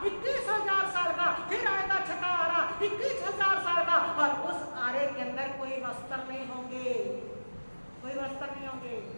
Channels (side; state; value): both; inverted; correlation -1.00